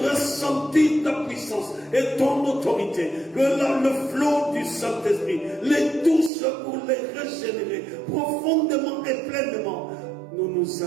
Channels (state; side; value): drops out; left; at 6.3 s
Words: ressentir ta puissance et ton autorité. Que le flot du Saint-Esprit les touche pour les régénérer profondément et pleinement. Nous nous